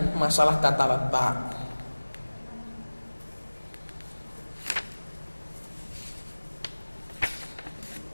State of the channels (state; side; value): inverted; both; correlation -1.00